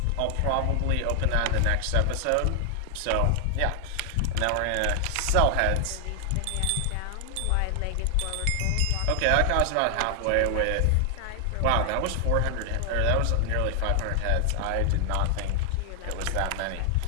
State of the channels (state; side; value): different; both; correlation 0.00